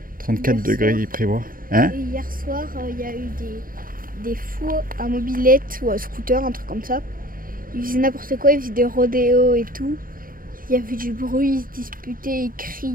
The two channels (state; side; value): late; left; 0.41 ms